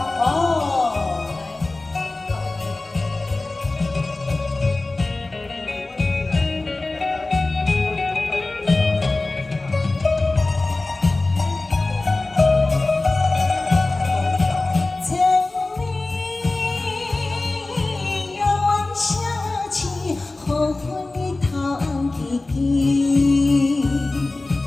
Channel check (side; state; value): right; quieter; 3.1 dB